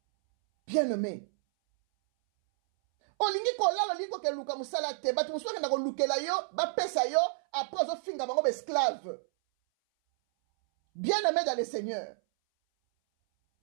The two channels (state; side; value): silent; left; 57 dB below the other